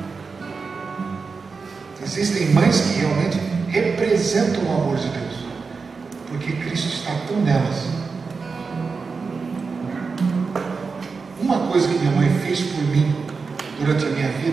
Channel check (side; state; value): left; quieter; 4.8 dB